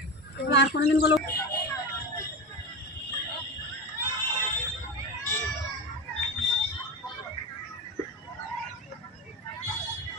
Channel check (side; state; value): both; normal; correlation 0.21